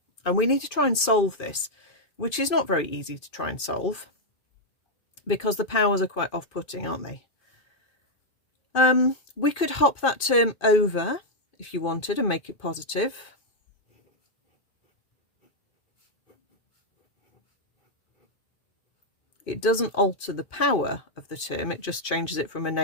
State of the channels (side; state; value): right; late; 2.5 ms